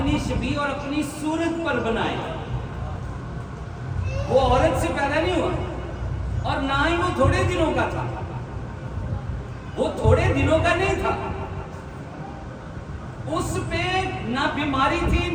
شبیہ اور اپنی صورت پر بنائیں. وہ عورت سے پیدا نہیں ہوا اور نہ ہی وہ تھوڑے دنوں کا تھا. وہ تھوڑے دنوں کا نہیں تھا. اس پہ نہ بیماری تھی،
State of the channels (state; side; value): identical; both; correlation 1.00